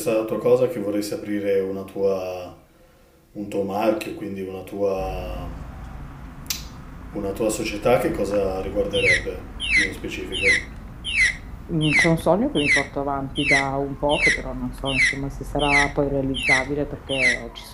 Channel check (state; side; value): identical; both; correlation 1.00